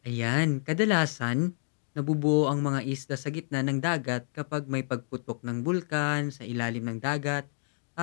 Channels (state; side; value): silent; right; digital silence